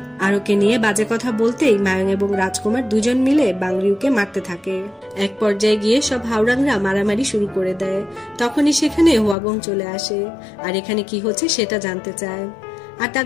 আরোকে নিয়ে বাজে কথা বলতেই মায়ং এবং রাজকুমার দুজন মিলে বাংরিউকে মারতে থাকে। এক পর্যায়ে গিয়ে সব হাওড়াংরা মারামারি শুরু করে দেয়। তখনই সেখানে হুয়াগং চলে আসে আর এখানে কি হচ্ছে সেটা জানতে চায়। আর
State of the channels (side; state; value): right; drops out; at 9.3 s